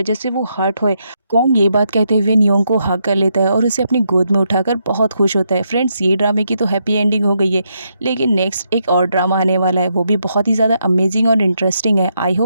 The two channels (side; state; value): both; inverted; correlation -0.79